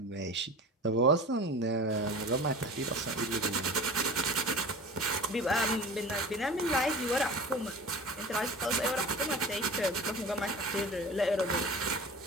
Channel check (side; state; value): both; normal; correlation 0.36